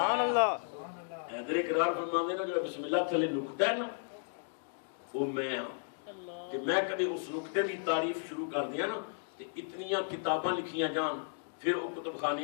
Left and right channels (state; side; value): silent; right; digital silence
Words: اللہ حیدر اقرار فرماندے نا جو بسم اللہ تھلے نقطہ ہے نا وہ میں ہوں کہ میں کبھی اس نقطے دی تعریف شروع کر دیا نا کہ اتنیاں کتاباں لکھیاں جان پھر وہ کتب